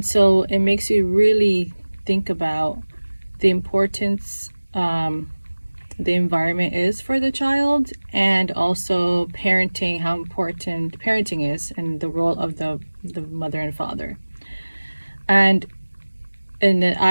so it makes you really think about the importance the environment is for the child, and also parenting, how important parenting is, and the role of the mother and father. And then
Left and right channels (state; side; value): inverted; both; correlation -1.00